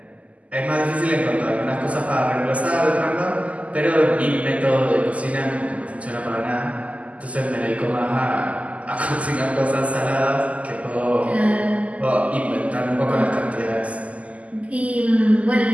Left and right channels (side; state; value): left; late; 0.069 ms